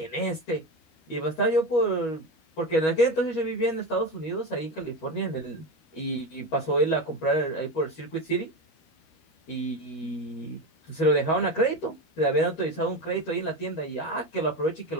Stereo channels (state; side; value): late; right; 13 ms